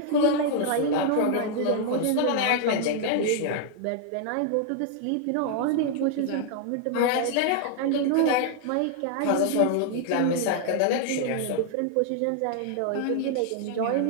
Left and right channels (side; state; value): both; different; correlation 0.00